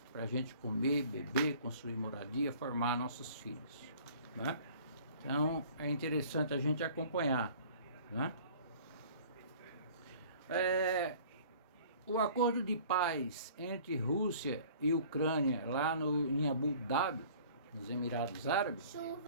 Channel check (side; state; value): both; inverted; correlation -0.50